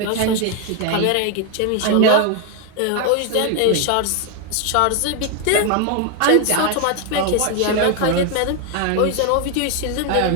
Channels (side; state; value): both; different; correlation 0.01